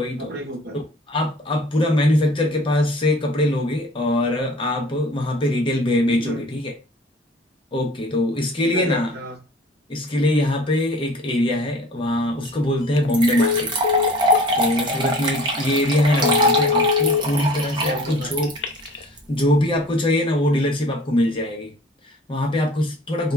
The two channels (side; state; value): both; normal; correlation 0.47